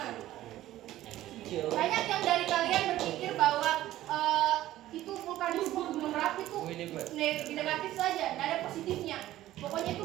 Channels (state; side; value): quieter; left; 14.5 dB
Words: Banyak yang dari kalian berpikir bahwa itu vulkanisme gunung Merapi itu negatif saja, nggak ada positifnya. Pokoknya itu